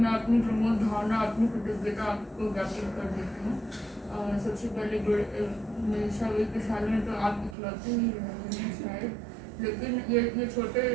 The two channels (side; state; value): left; drops out; at 7.6 s